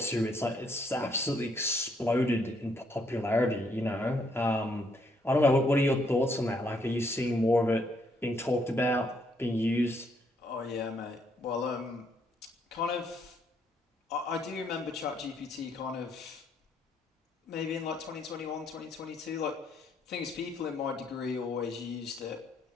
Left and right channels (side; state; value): both; normal; correlation 0.72